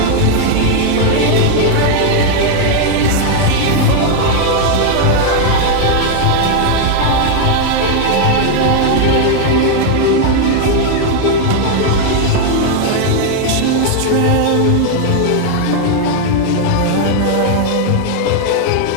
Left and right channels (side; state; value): both; different; correlation 0.00